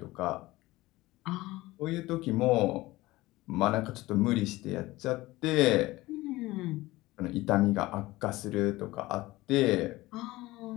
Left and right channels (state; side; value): quieter; right; 18.9 dB